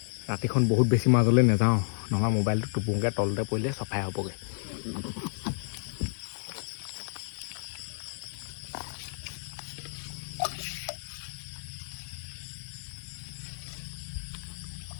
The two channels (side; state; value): right; silent; 57 dB below the other